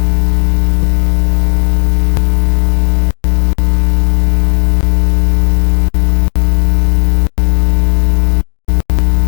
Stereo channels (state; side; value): silent; right; digital silence